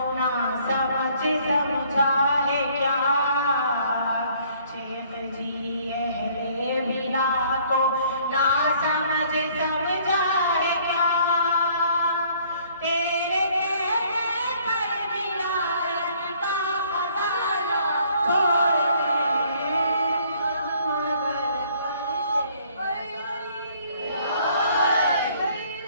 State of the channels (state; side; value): inverted; both; correlation -0.60